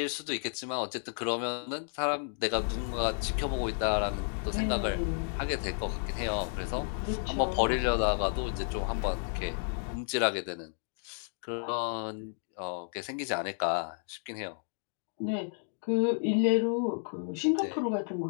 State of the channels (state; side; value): silent; right; 56 dB below the other